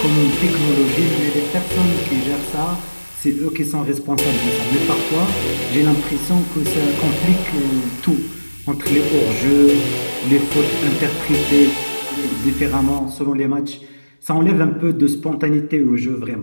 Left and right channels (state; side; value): inverted; both; correlation -1.00